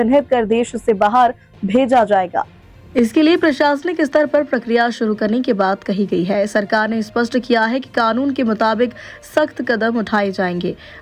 कर देश से बाहर भेजा जाएगा। इसके लिए प्रशासनिक स्तर पर प्रक्रिया शुरू करने की बात कही गई है। सरकार ने स्पष्ट किया है कि कानून के मुताबिक सख्त कदम उठाए जाएंगे।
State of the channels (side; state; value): both; identical; correlation 1.00